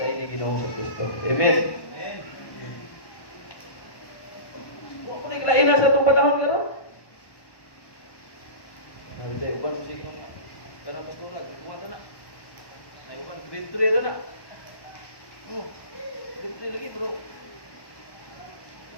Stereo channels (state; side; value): late; right; 1.1 ms